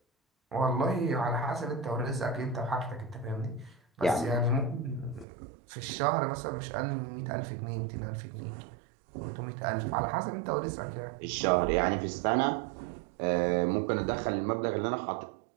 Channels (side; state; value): left; drops out; at 5.2 s